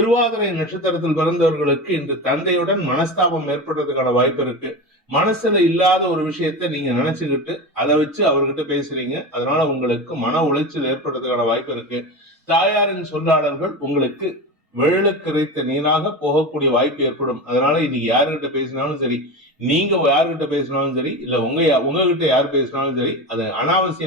நட்சத்திரத்தில் பிறந்தவர்களுக்கு இன்று தந்தையுடன் மனஸ்தாபம் ஏற்படுறதுக்கான வாய்ப்பு இருக்கு. மனசுல இல்லாத ஒரு விஷயத்த நீங்க நினைச்சுக்கிட்டு அதை வச்சு அவர்கிட்ட பேசுறீங்க. அதனால உங்களுக்கு மன உளைச்சல் ஏற்படுறதுக்கான வாய்ப்பு இருக்கு. தாயாரின் சொல்லாடல்கள் உங்களுக்கு வெள்ளக்கரைத்த நீராக போகக்கூடிய வாய்ப்பு ஏற்படும். அதனால இன்னைக்கு யாருகிட்ட பேசினாலும் சரி, நீங்க யாருகிட்ட பேசினாலும் சரி, இல்ல உங்ககிட்ட யார் பேசினாலும் சரி, அது அனாவசிய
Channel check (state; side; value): normal; both; correlation 0.24